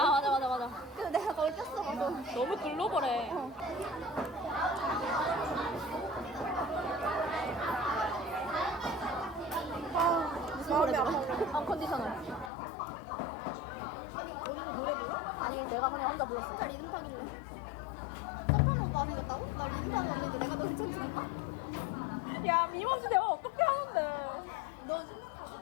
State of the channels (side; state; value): right; drops out; at 12.5 s